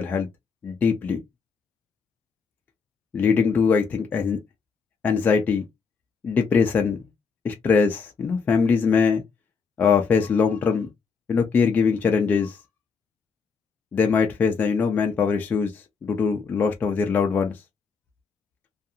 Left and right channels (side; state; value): right; quieter; 5.4 dB